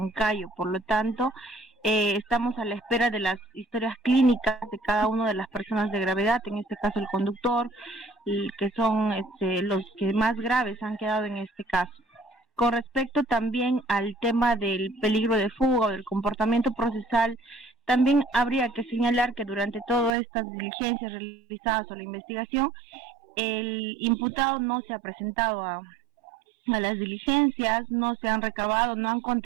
Por lo tanto, estamos a la espera de las historias clínicas de cada una de las personas de gravedad, en este caso el conductor, que son los que más graves han quedado en este caso. Con respecto también al tema del peligro de fuga o del comportamiento procesal, también habría que señalar que durante todas estas diligencias realizadas o la investigación, el imputado no se ha presentado a las diligencias, no se han recabado, no han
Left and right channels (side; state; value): left; drops out; at 20.1 s